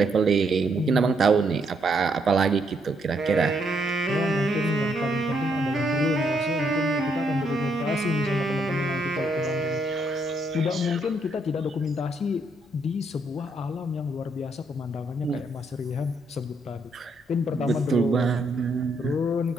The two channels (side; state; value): both; normal; correlation 0.74